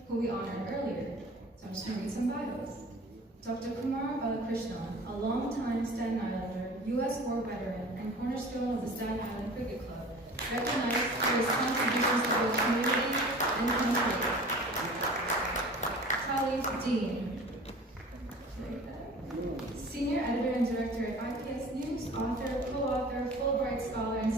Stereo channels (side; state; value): both; normal; correlation 0.42